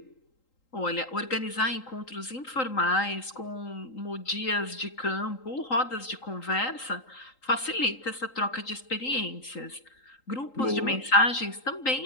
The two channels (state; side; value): late; right; 3.8 ms